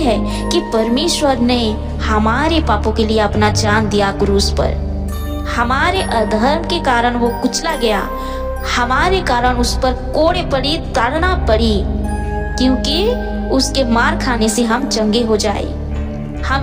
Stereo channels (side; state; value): both; identical; correlation 1.00